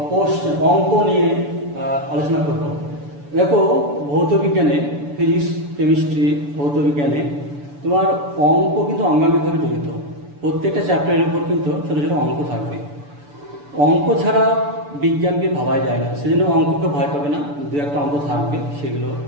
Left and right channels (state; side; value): late; left; 6.9 ms